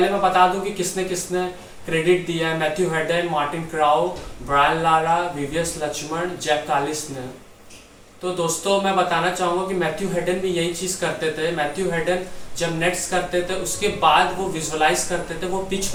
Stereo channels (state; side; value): identical; both; correlation 1.00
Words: मैं बता दूं कि किसने किसने क्रेडिट दिया है। Matthew Hayden, Martin Crowe, Brian Lara, VVS Laxman, Jacques Kallis ने। तो दोस्तों मैं बताना चाहूँगा कि मैथ्यू हेडन भी यही चीज़ करते थे। मैथ्यू हेडन जब नेट्स करते थे उसके बाद वो विजुअलाइज करते थे, वो पिच